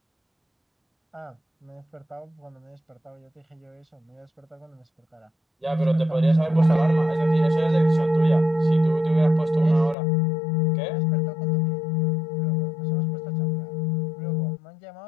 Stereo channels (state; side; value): drops out; right; at 10.0 s